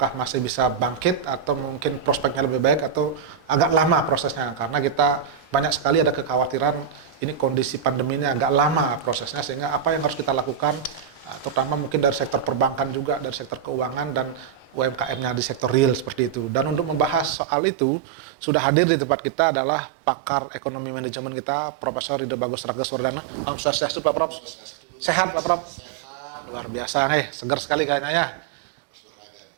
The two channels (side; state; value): left; drops out; at 17.4 s